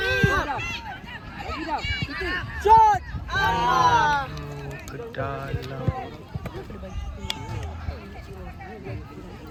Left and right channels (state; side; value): identical; both; correlation 1.00